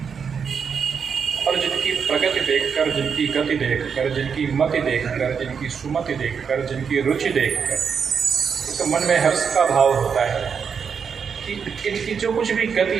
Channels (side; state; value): left; quieter; 6.5 dB